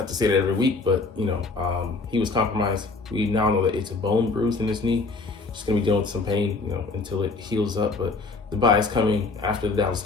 to say that every week, but he was compromised. We now know that it's a bone bruise in his knee. Just gonna be dealing with some pain, until it heals up. But the bye is coming after the Dallas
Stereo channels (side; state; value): right; quieter; 3.8 dB